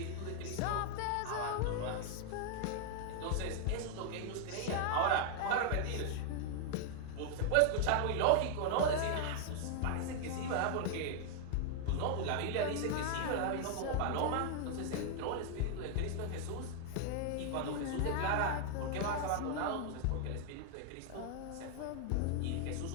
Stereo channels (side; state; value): both; different; correlation 0.00